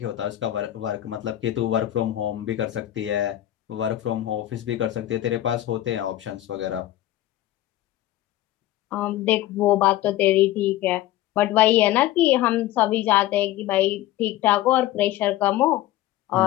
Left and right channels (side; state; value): right; quieter; 14.4 dB